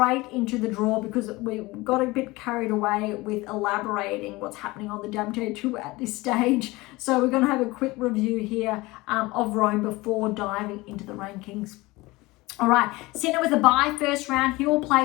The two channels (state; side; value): quieter; right; 21.4 dB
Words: into the draw, because we got a bit carried away with elaborating what's happening on the WTA Tour at this stage. So we're going to have a quick review here of Rome before diving into the rankings. All right, Sinner with a bye first round. He will